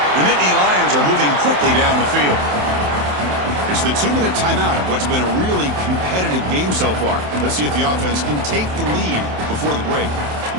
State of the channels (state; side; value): late; left; 27 ms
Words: The Nittany Lions are moving quickly down the field. It's the 2-minute timeout of what's been a really competitive game so far. Let's see if the offense can take the lead before the break.